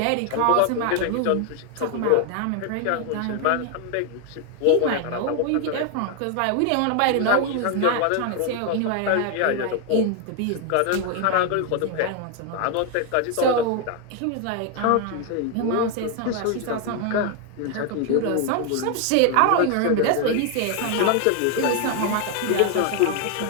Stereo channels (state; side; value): different; both; correlation 0.01